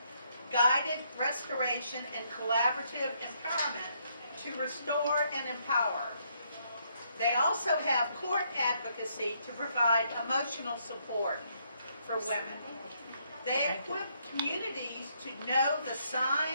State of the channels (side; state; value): both; inverted; correlation -0.73